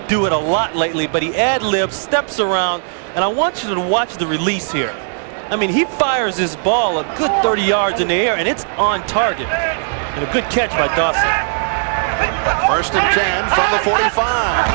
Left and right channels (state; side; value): silent; left; digital silence